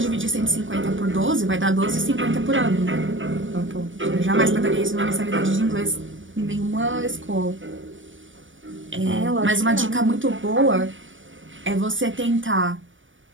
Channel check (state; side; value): late; left; 0.56 ms